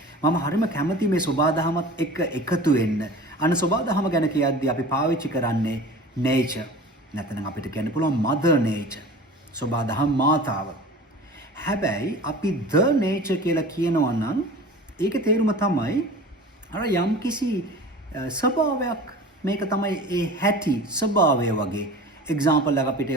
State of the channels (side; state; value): both; normal; correlation 0.39